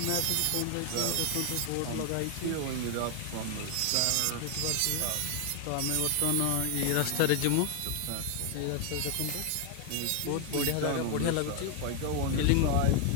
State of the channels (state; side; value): different; both; correlation 0.00